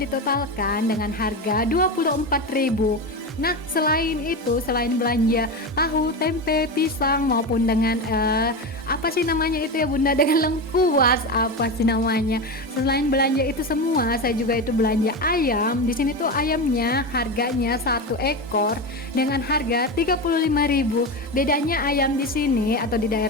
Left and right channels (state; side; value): normal; both; correlation 0.19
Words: dengan harga 24.000. Nah selain itu, selain belanja tahu, tempe, pisang maupun dengan apa sih namanya itu ya bunda, dengan lengkuas apa sih namanya, selain belanja itu semua saya juga itu belanja ayam. Di sini tuh ayamnya harganya 1 ekor dengan harga 35.000. Bedanya ayam di sini atau di